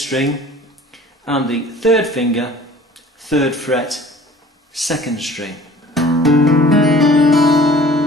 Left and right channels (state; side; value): normal; both; correlation 0.49